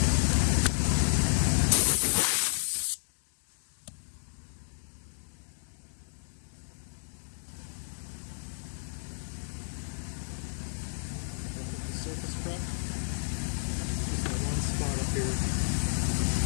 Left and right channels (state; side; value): silent; right; digital silence